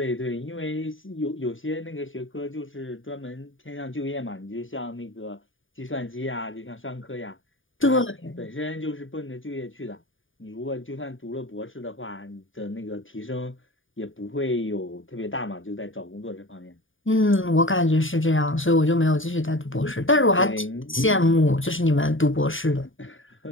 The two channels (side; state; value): right; late; 0.58 ms